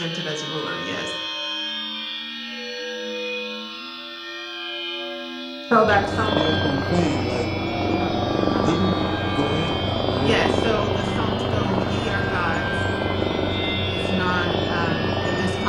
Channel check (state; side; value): identical; both; correlation 1.00